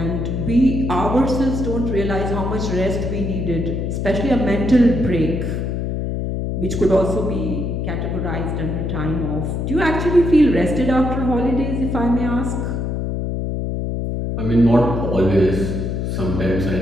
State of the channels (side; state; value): left; noise; hum, 2 dB below the sound